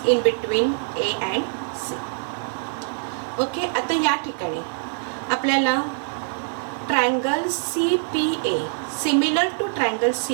in between A and C. Okay, आता या ठिकाणी आपल्याला triangle CPA similar to triangle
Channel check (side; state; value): left; silent; 57 dB below the other